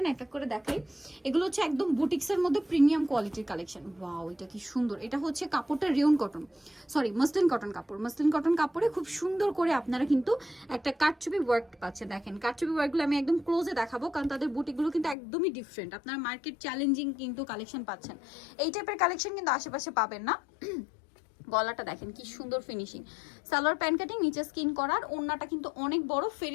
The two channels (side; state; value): right; drops out; at 15.2 s